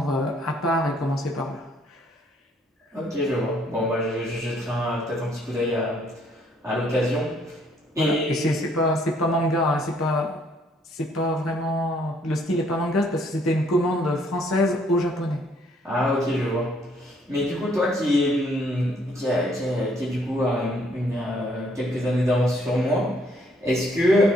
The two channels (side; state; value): both; normal; correlation 0.66